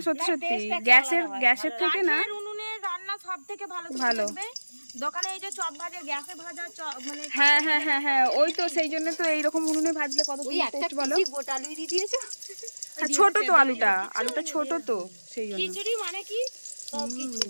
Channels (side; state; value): both; inverted; correlation -1.00